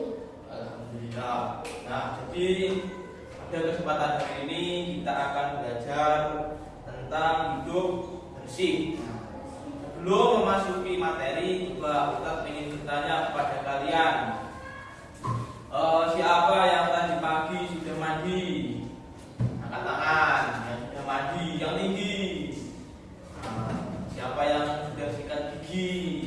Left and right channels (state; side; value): identical; both; correlation 1.00